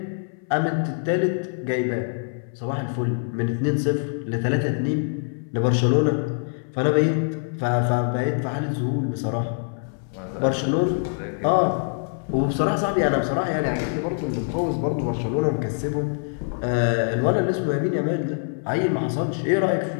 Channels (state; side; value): silent; right; 61 dB below the other